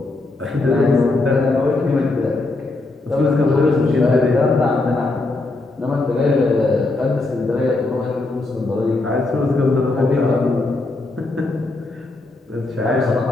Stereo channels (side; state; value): right; quieter; 3.1 dB